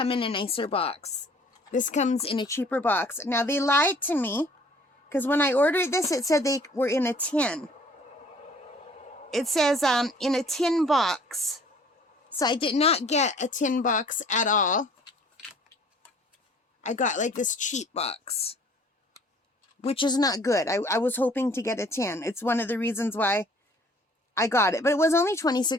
in a nicer box. This comes in a cheaper box. Now, they lied to me, because when I ordered this, it said they were in a tin. It says in a tin box. So I did not get a tin box at all. I got like this cheap box, which is not good. I was hoping to get a tin. It's one of the reasons why I got it. But it was only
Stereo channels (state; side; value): normal; both; correlation 0.55